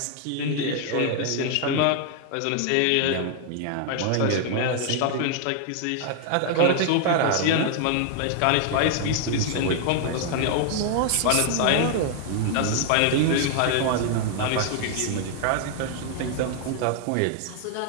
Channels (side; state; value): both; different; correlation 0.00